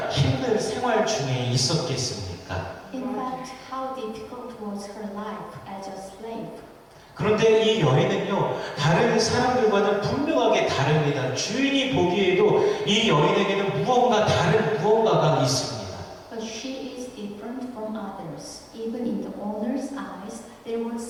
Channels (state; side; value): identical; both; correlation 1.00